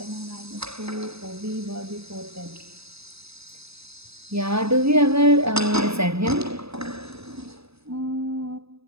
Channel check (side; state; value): left; late; 0.78 ms